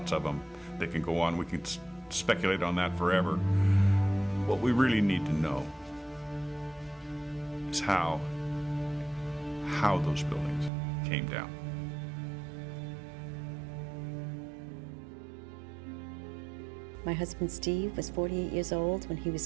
of them. They can go on. We can speculate on that forever. What we really need to know is how those buildings came down. My husband Steve was 48 years old when he was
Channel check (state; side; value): drops out; left; at 10.7 s